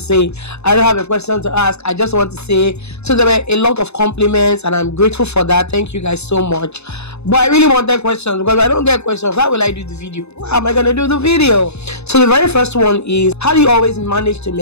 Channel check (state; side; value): late; right; 0.80 ms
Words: I don't have a question to ask. I just want to say. So there were a lot of compliments and I'm grateful for that. Thank you guys so much. But I really wanted questions, because if I don't get questions, how will I do the video? How am I going to do the video? So the very first one is, how do you always manage to